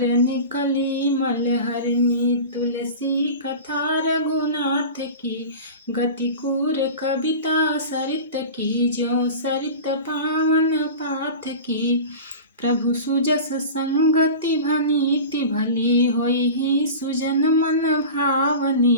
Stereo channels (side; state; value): both; inverted; correlation -0.33